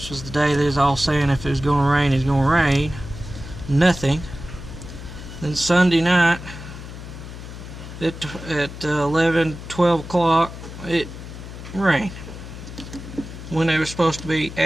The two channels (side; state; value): left; noise; hum, 12 dB below the sound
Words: was the day they was all saying if it was going to rain, it's going to rain. Nothing. Then Sunday night at 11, 12 o'clock, it rained when there was supposed to be